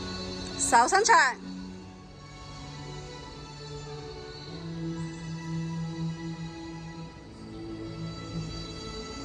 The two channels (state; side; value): identical; both; correlation 1.00